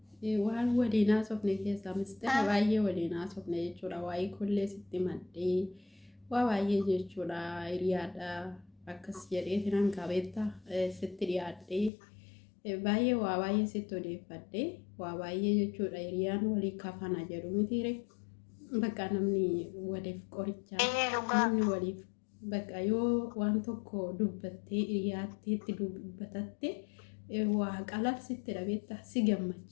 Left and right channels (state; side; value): drops out; right; at 11.9 s